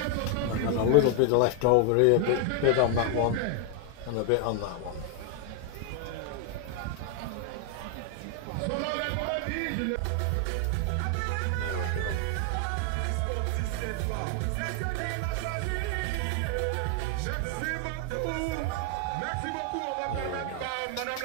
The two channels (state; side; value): different; both; correlation 0.00